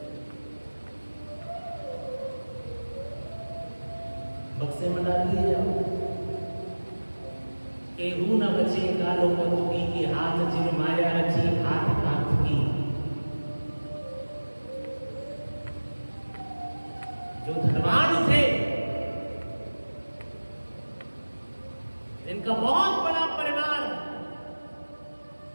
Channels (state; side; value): inverted; both; correlation -1.00